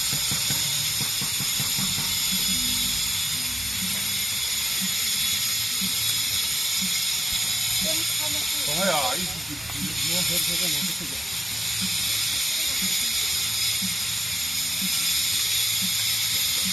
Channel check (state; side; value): normal; both; correlation 0.92